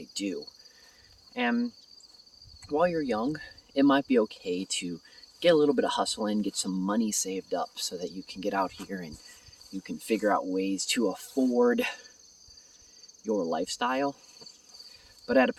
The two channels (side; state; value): both; identical; correlation 1.00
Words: do. And while you're young, it might be okay to get a little bit of hustle in, get some money saved up so that you can get out here and you can figure out ways to afford your lifestyle. But at a